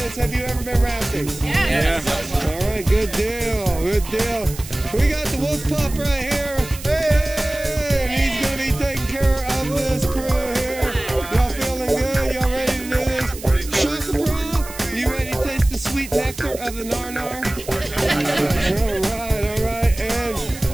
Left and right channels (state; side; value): noise; right; hiss, 14 dB below the sound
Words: Have you ever been rafting? Yeah. All right, good deal, good deal. We got the wolf pup right here. Hey, and he's going to be taking care of this crew here. Y'all feeling good? Y'all ready to do this? Shaka Bra, you ready to taste the sweet nectar of the nar-nar? All right. And,